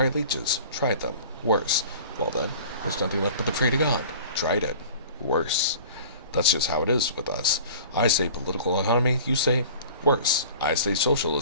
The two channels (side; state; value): both; inverted; correlation -0.43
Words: leeches. Tried them. Worse. Well then, there's nothing left but to pray to God. Tried it. Worse. That's just how it is with us. I say political economy, you say worse. I say